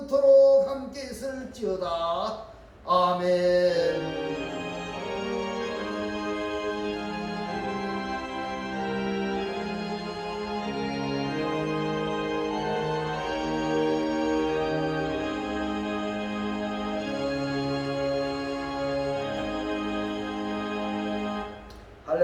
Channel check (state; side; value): identical; both; correlation 1.00